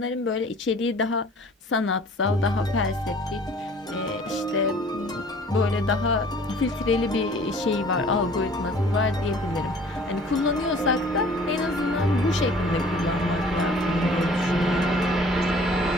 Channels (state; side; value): normal; both; correlation 0.51